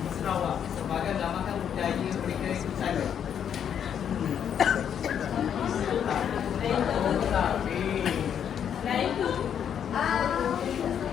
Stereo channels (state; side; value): quieter; right; 8.6 dB